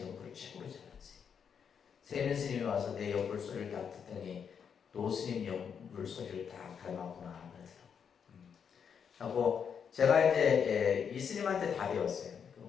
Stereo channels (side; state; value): right; quieter; 7.2 dB